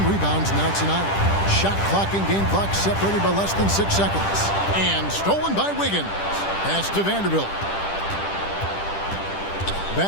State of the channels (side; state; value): right; late; 10 ms